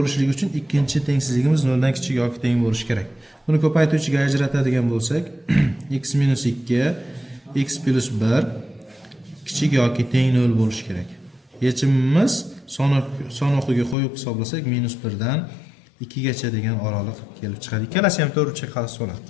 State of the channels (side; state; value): right; drops out; at 14.0 s